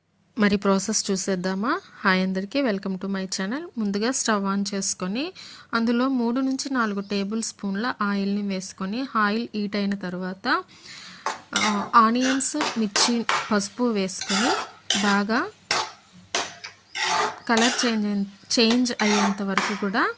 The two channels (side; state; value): both; identical; correlation 1.00